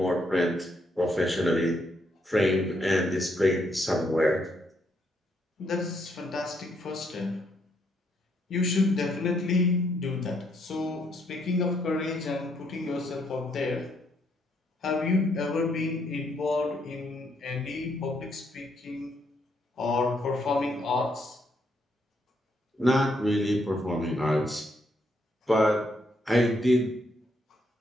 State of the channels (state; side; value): normal; both; correlation 0.74